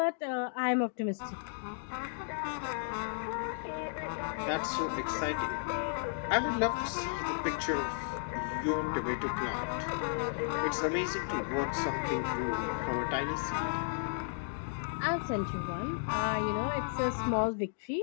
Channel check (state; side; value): silent; right; digital silence